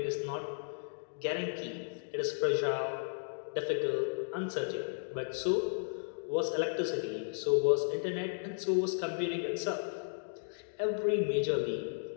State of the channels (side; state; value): right; silent; digital silence